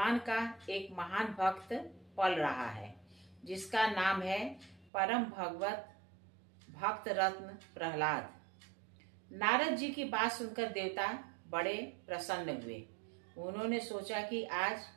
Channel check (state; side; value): drops out; left; at 4.9 s